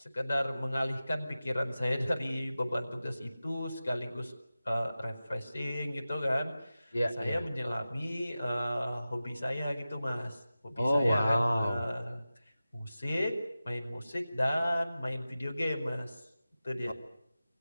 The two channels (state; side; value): inverted; both; correlation -0.95